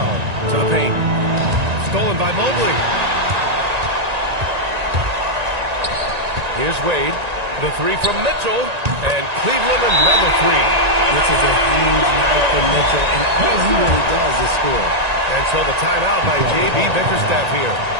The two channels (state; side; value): late; left; 1.9 ms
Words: to the paint. Stolen by Mobley. Here's Wade. The three from Mitchell. And Cleveland another three. This is a huge night for Mitchell, and all he really does is score. And so the timeout by J.B. Bickerstaff here.